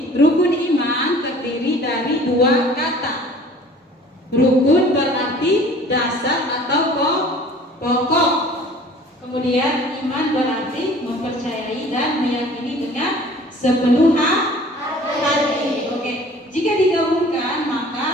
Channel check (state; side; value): normal; both; correlation 0.49